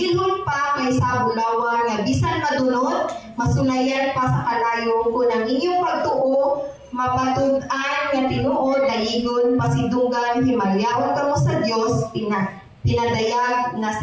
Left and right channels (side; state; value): both; identical; correlation 1.00